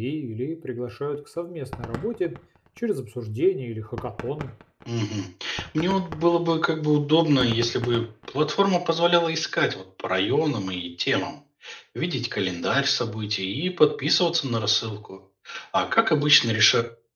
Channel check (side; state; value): both; identical; correlation 1.00